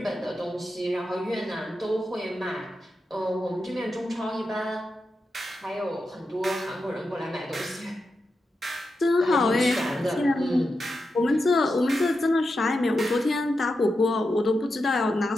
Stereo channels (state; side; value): normal; both; correlation 0.88